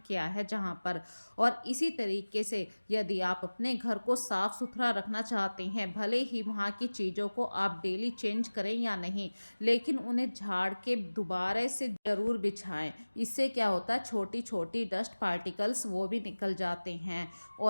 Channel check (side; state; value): both; inverted; correlation -1.00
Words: किया है जहाँ पर। और इसी तरीके से यदि आप अपने घर को साफ़ सुथरा रखना चाहते हैं, भले ही वहाँ की चीज़ों को आप डेली चेंज करें या नहीं, लेकिन उन्हें झाड़ के दोबारा से ज़रूर बिछाएं। इससे क्या होता है, छोटी छोटी डस्ट पार्टिकल्स वो भी निकल जाते हैं।